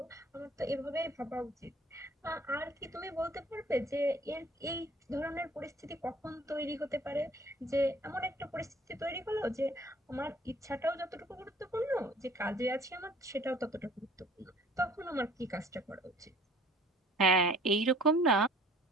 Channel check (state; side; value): normal; both; correlation 0.53